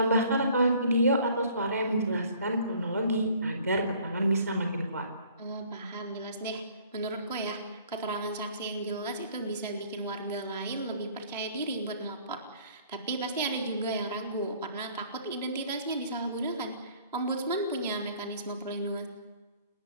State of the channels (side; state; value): both; inverted; correlation -0.55